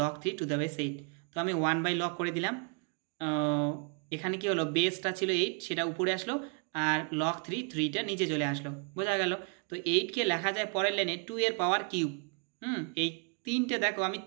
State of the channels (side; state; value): left; quieter; 40.0 dB